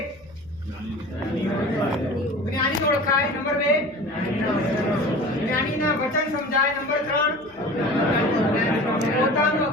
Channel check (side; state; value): left; noise; hum, 27 dB below the sound